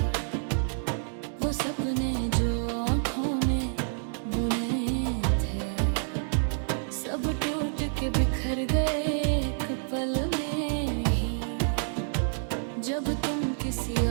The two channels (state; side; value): silent; left; digital silence